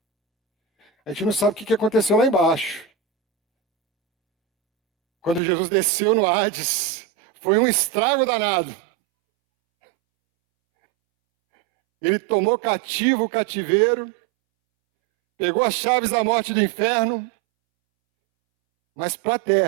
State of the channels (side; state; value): left; drops out; at 5.4 s